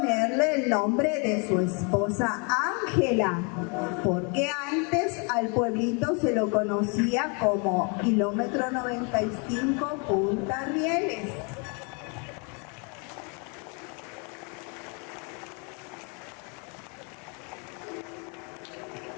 el nombre de su esposa Ángela, porque antes al pueblito se lo conocía como Kilómetro 95 Punta Rieles.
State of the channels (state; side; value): quieter; right; 34.6 dB